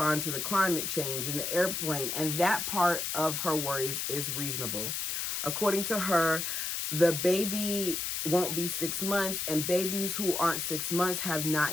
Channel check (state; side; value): noise; left; hiss, 2 dB below the sound